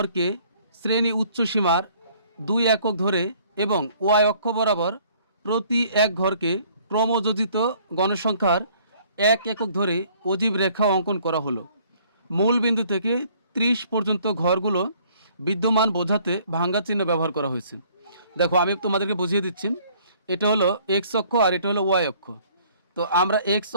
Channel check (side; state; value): both; inverted; correlation -0.59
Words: শ্রেণী উচ্চসীমার 2 একক ধরে এবং ওয়াই অক্ষ বরাবর প্রতি এক ঘরকে ক্রমযোজিত গণসংখ্যার 1 একক ধরে অজীব রেখা অঙ্কন করা হলো। মূল বিন্দু থেকে 30 পর্যন্ত ঘরগুলো বিদ্যমান বোঝাতে ভাঙ্গা চিহ্ন ব্যবহার করা হয়েছে। দেখো আমি তোমাদেরকে বুঝিয়ে দিচ্ছি, এটা হলো এক্স অক্ষ আর এটা হলো ওয়াই অক্ষ। তো আমরা এক্স